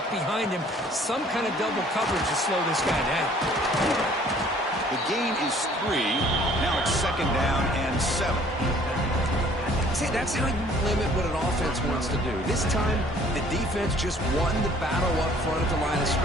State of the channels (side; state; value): both; normal; correlation 0.56